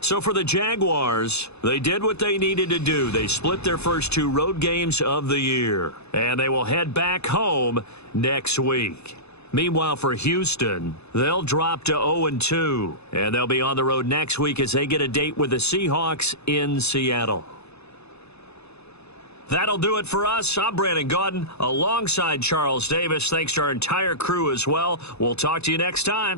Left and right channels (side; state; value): right; late; 0.80 ms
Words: for the Jaguars, they did what they needed to do. They split their first 2 road games of the year, and they will head back home next week. Meanwhile, for Houston, they'll drop to 0-2, and they'll be on the road next week as they get a date with the Seahawks in Seattle. That'll do it for us. I'm Brandon Gaudin alongside Charles Davis. Thanks to our entire crew as well. We'll talk to you next